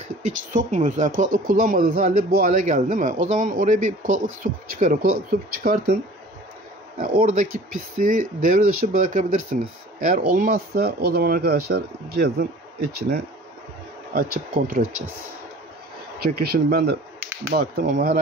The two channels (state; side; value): normal; both; correlation 0.46